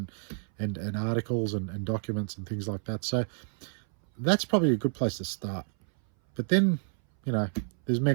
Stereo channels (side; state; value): left; silent; 58 dB below the other